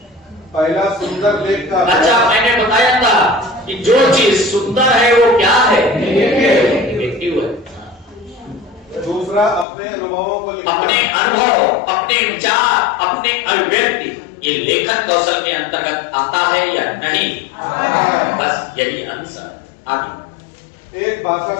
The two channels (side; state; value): right; drops out; at 9.7 s